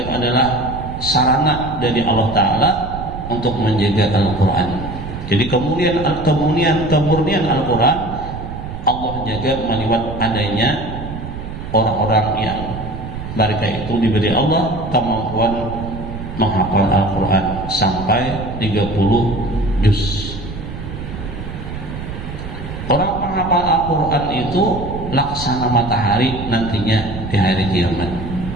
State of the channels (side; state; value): right; noise; rumble, 9 dB below the sound